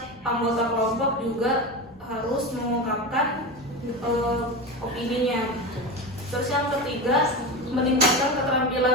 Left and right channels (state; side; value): normal; both; correlation 0.23